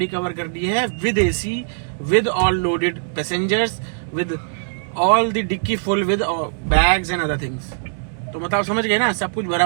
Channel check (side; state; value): left; silent; 63 dB below the other